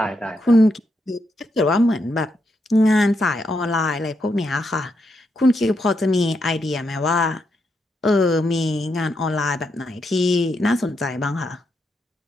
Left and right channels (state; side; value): normal; both; correlation 0.81